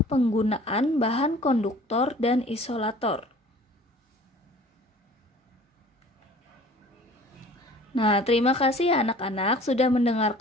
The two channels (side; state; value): both; normal; correlation 0.48